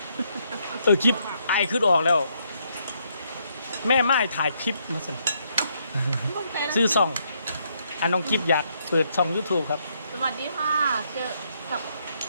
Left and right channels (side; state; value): both; inverted; correlation -0.74